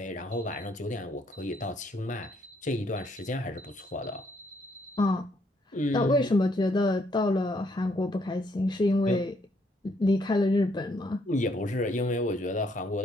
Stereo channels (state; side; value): normal; both; correlation 0.71